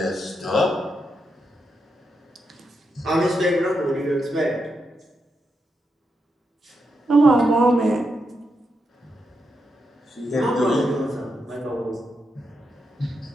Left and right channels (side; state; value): both; normal; correlation 0.84